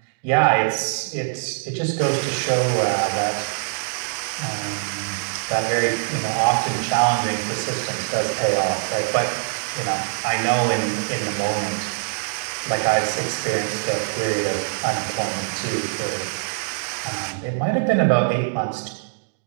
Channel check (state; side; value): silent; left; digital silence